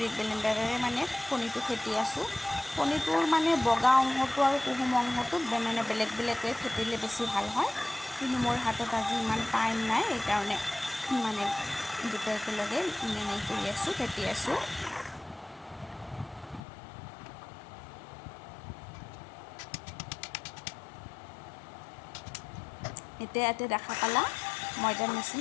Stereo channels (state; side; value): drops out; right; at 16.6 s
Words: ব্লেণ্ডাৰেৰে মানে কণীটো ফেটি আছোঁ। কণীটোৰ মানে বগা অংশটো আৰু কুহুম অংশটো মানে বেলেগ বেলেগকৈ ফেটিলে বেছি ভাল হয়, কিন্তু মোৰ হাতত আজি ইমান টাইম নাই, সেইকাৰণে মানে দুটা একেলগে মানে কৰি আছোঁ, ফেটি আছোঁ। এতিয়া ইয়াতে দেখা পালা ময়দাৰ